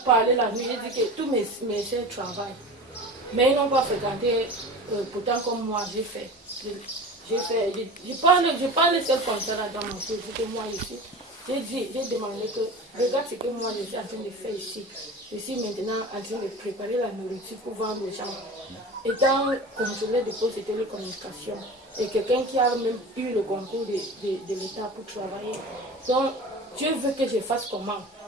parlé la nuit, j'ai dit que tous mes soeurs travaillent. Mais ils n'ont pas fréquenté, pourtant comme moi, j'ai fait. Je parle seul comme ça là dans mon cœur, que moi ici. J'ai demandé que, regarde ce que moi je suis en train de faire ici. Je suis maintenant en train de préparer la nourriture pour vendre aux gens. Étant contrôleur de poste de télécommunication, et quelqu'un qui a même eu le concours de l'État pour travailler. Donc, Dieu veut que je fasse comment?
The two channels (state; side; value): normal; both; correlation 0.34